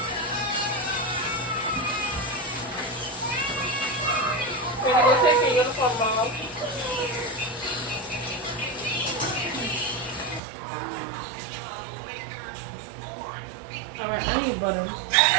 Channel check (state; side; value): drops out; left; at 10.4 s